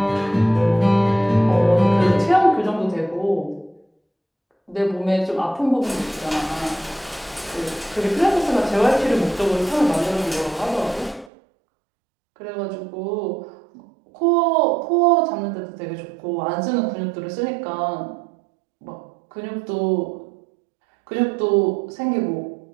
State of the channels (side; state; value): left; drops out; at 11.3 s